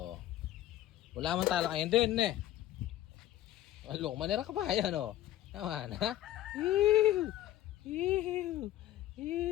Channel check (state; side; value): quieter; right; 13.7 dB